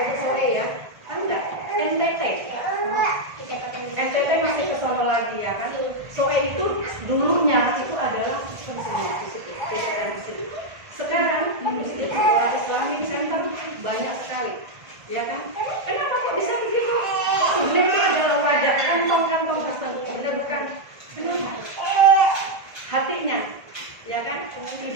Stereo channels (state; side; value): late; left; 1.5 ms